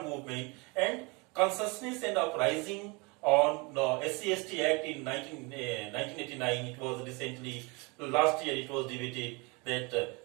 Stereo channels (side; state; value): left; quieter; 28.3 dB